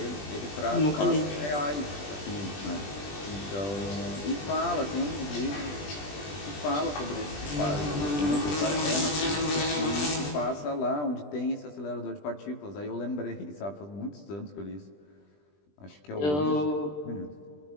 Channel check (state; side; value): late; right; 20 ms